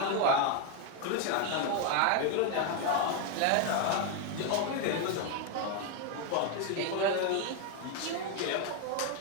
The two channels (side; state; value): both; different; correlation 0.01